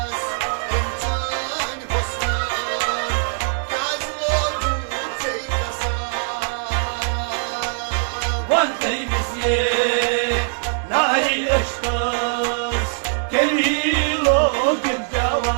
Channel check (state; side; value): silent; left; digital silence